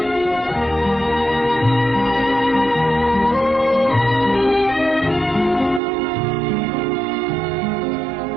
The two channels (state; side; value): drops out; left; at 5.8 s